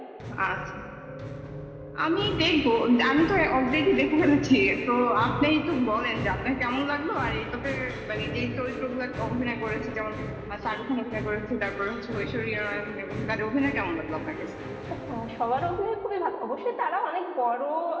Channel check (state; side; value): identical; both; correlation 1.00